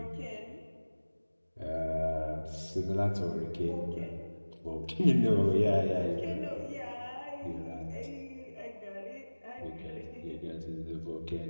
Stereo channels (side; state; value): both; inverted; correlation -1.00